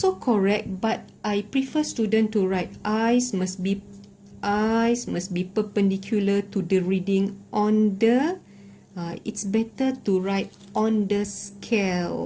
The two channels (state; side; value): identical; both; correlation 1.00